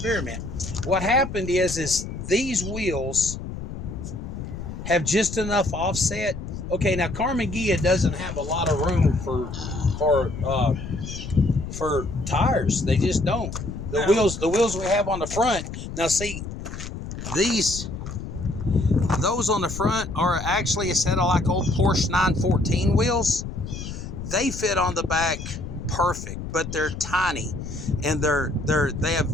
What happened is these wheels have just enough offset. Okay, now Carmen Gia doesn't have a lot of room for tires. They just don't. The wheels we have on the front. Now see, those on the front are actually a set of like old Porsche 914 wheels. They fit on the back perfect, but they're tiny and they have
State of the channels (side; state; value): left; noise; rumble, 8 dB below the sound